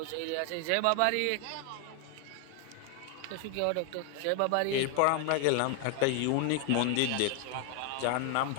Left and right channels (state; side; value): different; both; correlation 0.00